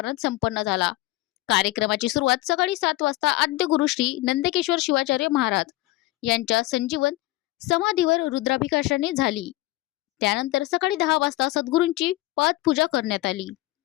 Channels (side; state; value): right; quieter; 18.7 dB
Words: संपन्न झाला. कार्यक्रमाची सुरुवात सकाळी 7 वाजता आद्य गुरु श्री नंदकेश्वर शिवाचार्य महाराज यांच्या संजीवन समाधीवर रुद्राभिषेकाने झाली. त्यानंतर सकाळी 10 वाजता सद्गुरूंची पादपूजा करण्यात आली